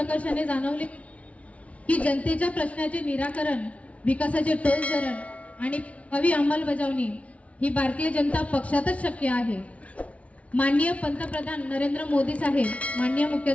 जाणवले की जनतेच्या प्रश्नाचे निराकरण, विकासाचे ठोस धोरण आणि हवी अंमलबजावणी ही भारतीय जनता पक्षातच शक्य आहे. माननीय पंतप्रधान नरेंद्र मोदी साहेब, माननीय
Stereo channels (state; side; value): late; right; 0.065 ms